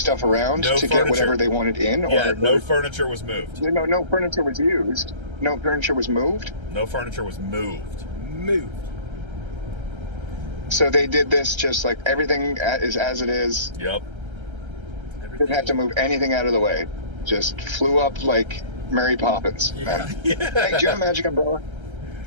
around No to furniture. get whatever they wanted in? Yeah, or no furniture was moved. No furniture was used. No furniture was moved. No furniture was moved. Moved. So they did this just like everything is as it is. Yep. Didn't have to move anything out of the way. Just flew up like Mary Poppins. Yeah. Hey, do you have a magic umbrella?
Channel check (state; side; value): late; left; 1.3 ms